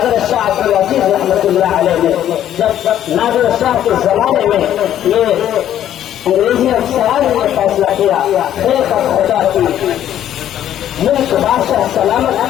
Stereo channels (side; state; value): right; quieter; 11.2 dB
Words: شاہ عبد العزیز رحمۃ اللہ علیہ نے جب نادر شاہ کے زمانے میں یہ انگریزی افسران نے فیصلہ کیا ملک بادشاہ سلامت